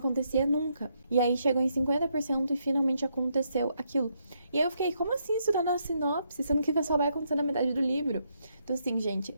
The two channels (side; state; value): both; inverted; correlation -0.77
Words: nunca. E aí chegou em 50% e finalmente aconteceu aquilo. E aí eu fiquei, como assim isso tá na sinopse? Sendo que só vai acontecer na metade do livro. Então assim, gente,